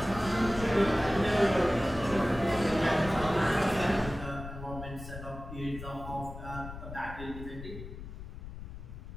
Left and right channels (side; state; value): left; noise; rumble, 11 dB below the sound